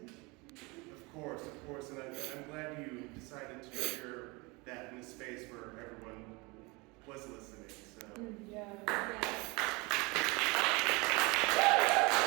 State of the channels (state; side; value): quieter; left; 26.3 dB